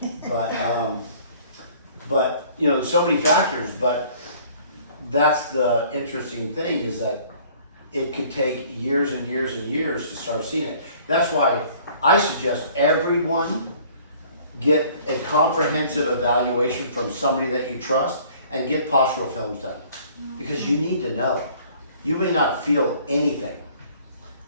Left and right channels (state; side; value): inverted; both; correlation -0.54